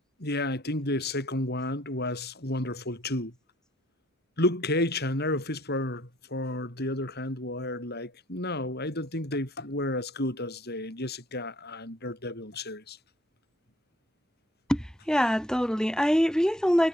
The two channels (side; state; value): both; normal; correlation 0.62